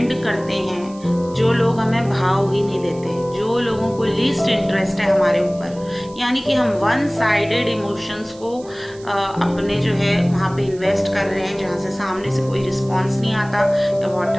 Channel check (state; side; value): noise; right; hiss, 23 dB below the sound